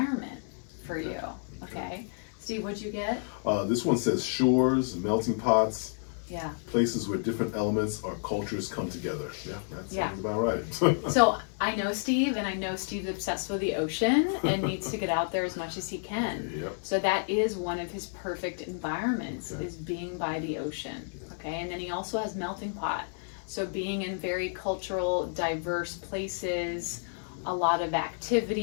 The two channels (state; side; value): silent; right; digital silence